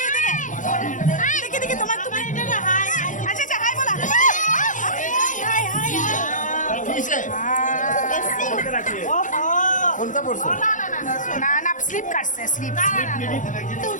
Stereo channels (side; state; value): right; late; 0.37 ms